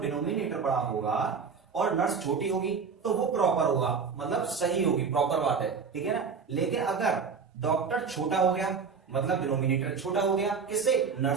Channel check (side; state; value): left; quieter; 5.6 dB